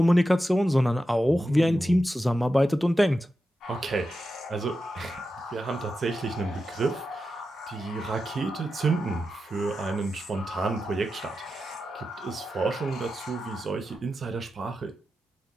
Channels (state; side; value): normal; both; correlation 0.90